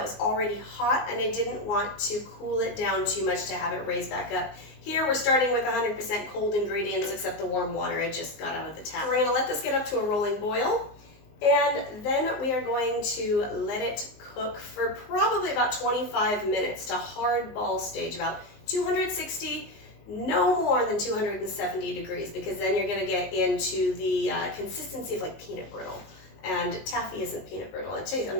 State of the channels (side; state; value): right; late; 19 ms